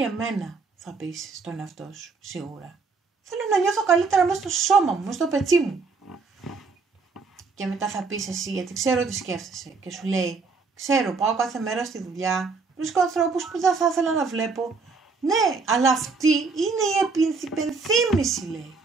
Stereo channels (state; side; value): quieter; left; 4.5 dB